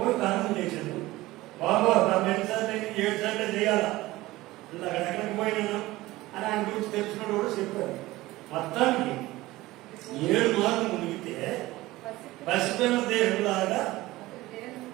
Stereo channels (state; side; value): quieter; left; 18.4 dB